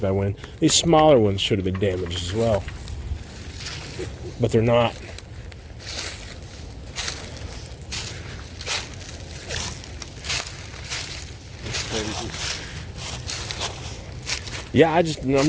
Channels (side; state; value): both; identical; correlation 1.00